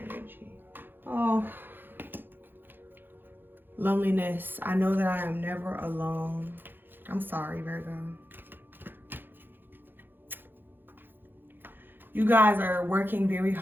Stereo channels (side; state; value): left; late; 0.097 ms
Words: energy? Oh, loneliness. I know that I am never alone. I'm sorry, Virgo. You guys are working very